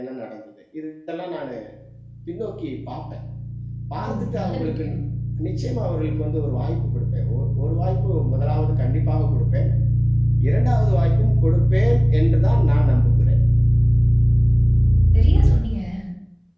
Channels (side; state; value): both; identical; correlation 1.00